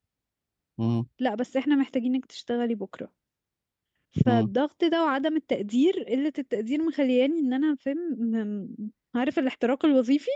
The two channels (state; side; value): identical; both; correlation 1.00